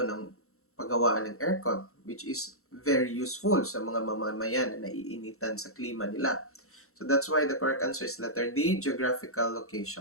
ng paggawaan ng aircon, which is very useful sa mga mamamayan na naiinitan sa klima nila. So, that's why the correct answer is letter D, geographical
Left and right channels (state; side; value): late; right; 0.63 ms